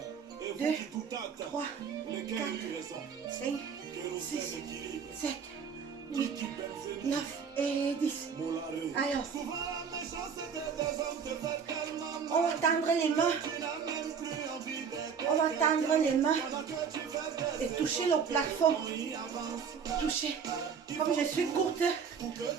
2, 3, 4, 5, 6, 7, 8, 9 et 10. Alors, on va tendre les mains. On va tendre les mains et toucher le plafond. Toucher. Comme je suis courte, je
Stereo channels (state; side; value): quieter; left; 6.5 dB